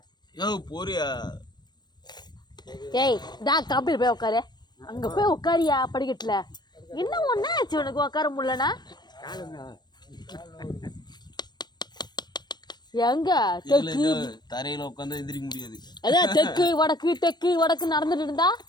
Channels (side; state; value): right; late; 0.21 ms